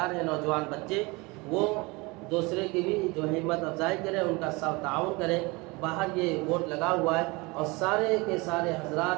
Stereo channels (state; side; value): quieter; left; 25.4 dB